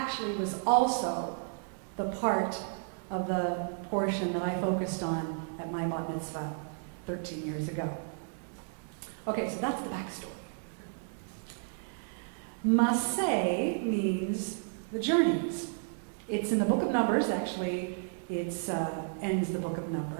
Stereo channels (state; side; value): silent; left; digital silence